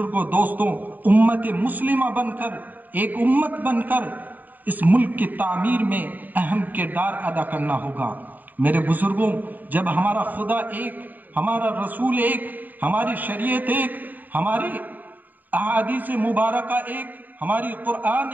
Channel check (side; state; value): left; late; 0.086 ms